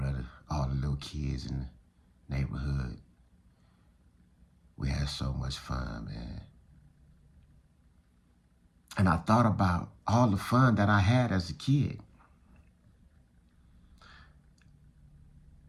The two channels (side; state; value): both; identical; correlation 1.00